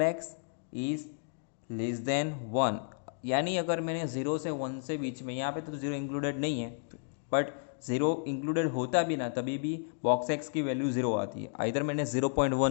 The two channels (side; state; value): right; silent; digital silence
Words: x is less than 1, यानी अगर मैंने 0 से 1 से बीच में, यहाँ पे तो 0 इंक्लूडेड नहीं है, बट 0 इंक्लूडेड होता भी ना तभी भी बॉक्स एक्स की वैल्यू 0 आती है। इधर मैंने 0.1